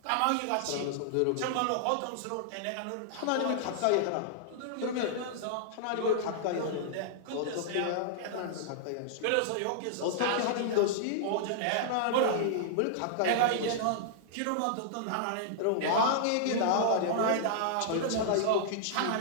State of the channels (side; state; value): both; different; correlation -0.01